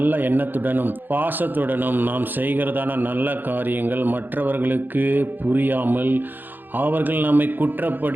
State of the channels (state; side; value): late; left; 0.091 ms